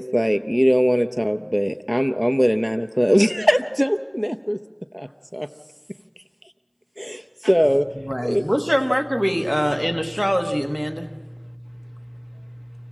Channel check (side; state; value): both; identical; correlation 1.00